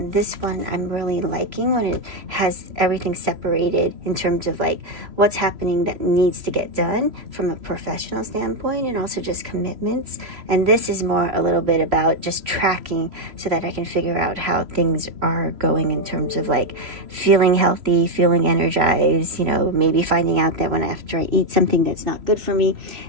this one I'm really liking when it has everything separated in terms of like what's happening that needs to get done from a professional standpoint, and also just commitments. And this is more a little bit about just tracking so that I can figure out how things are going in terms of like feeling healthy, feeling energized, you know, maybe finding out that when after I eat something that's not good for me,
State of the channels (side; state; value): left; late; 3.0 ms